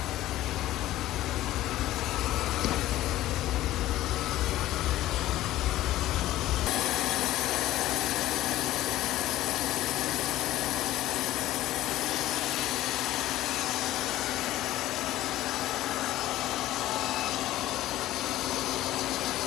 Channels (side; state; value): right; quieter; 14.9 dB